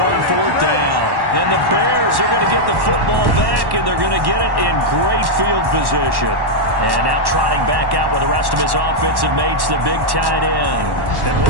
4th down. And the Bears are going to get the football back, and they're going to get it in great field position. And now trotting back out with the rest of his offensive mates, the big tight end. And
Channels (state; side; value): late; left; 1.1 ms